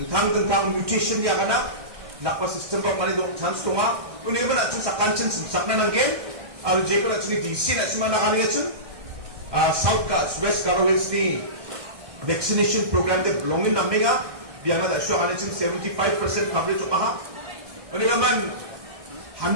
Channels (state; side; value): late; left; 1.6 ms